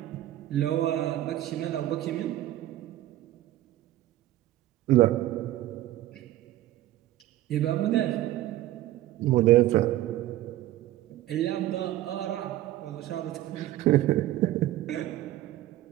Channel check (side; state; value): left; quieter; 14.7 dB